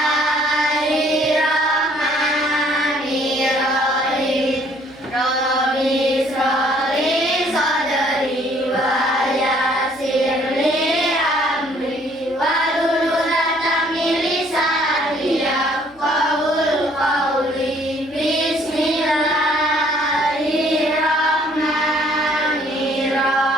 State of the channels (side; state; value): left; noise; hum, 30 dB below the sound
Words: Rabbi sholli sadri wa yassir li amri wahlul 'uqdatam min lisani yafqahul qawli.